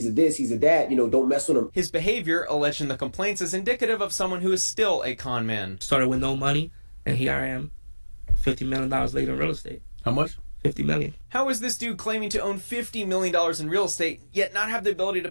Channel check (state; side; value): inverted; both; correlation -1.00